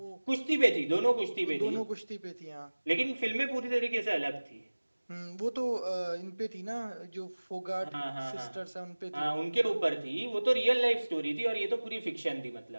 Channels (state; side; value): inverted; both; correlation -1.00